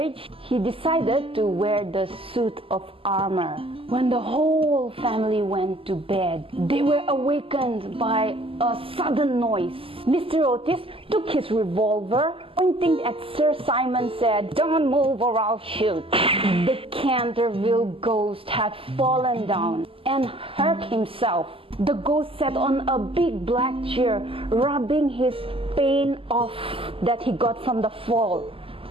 he decided to wear the suit of armor. When the whole family went to bed, they were awakened by a sudden noise. Mr. Otis took his revolver, pointing at Sir Simon, said, "Don't move or I'll shoot." The Canterville Ghost had fallen down and hurt himself. The ghost sat on a big black chair, rubbing his pain off that he got from the fall.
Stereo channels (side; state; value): left; late; 0.26 ms